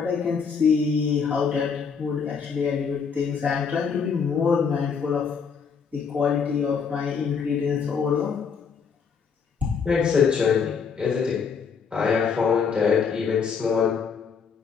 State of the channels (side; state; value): right; quieter; 6.1 dB